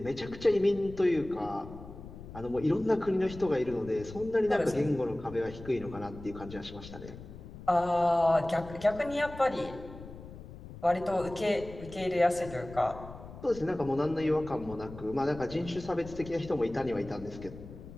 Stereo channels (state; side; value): noise; left; rumble, 14 dB below the sound